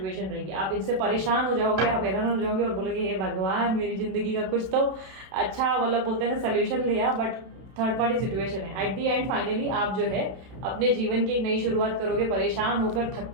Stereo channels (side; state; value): left; late; 31 ms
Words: रहेगी। आप इनसे परेशान हो जाओगे, आप हैरान हो जाओगे और बोलोगे हे भगवान मेरी जिंदगी का कुछ तो अच्छा मतलब बोलते हैं ना सोल्यूशन लिया, बट थर्ड पार्टी सिचुएशन है। एट दी एंड फाइनली आप जो है अपने जीवन की एक नई शुरुआत करोगे, परेशान होकर, थक